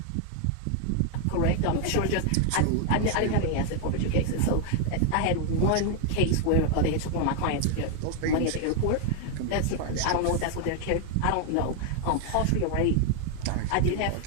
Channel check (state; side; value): different; both; correlation 0.01